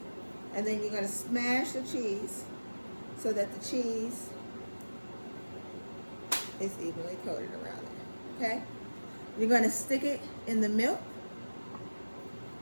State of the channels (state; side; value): inverted; both; correlation -1.00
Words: And then you're going to smash the cheese so that the cheese is evenly coated around it, okay? You're going to stick it in the milk.